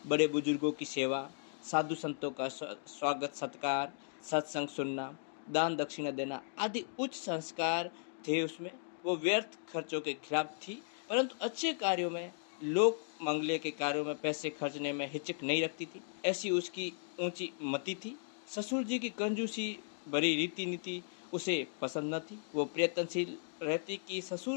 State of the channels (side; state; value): right; silent; digital silence